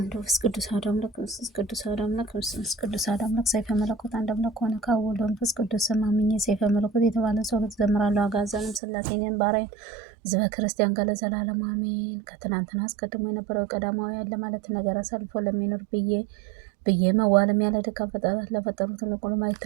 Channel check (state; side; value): drops out; left; at 8.8 s